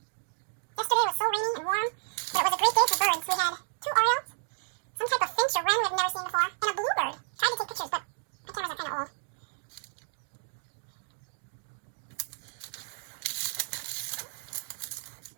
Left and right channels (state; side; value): silent; left; digital silence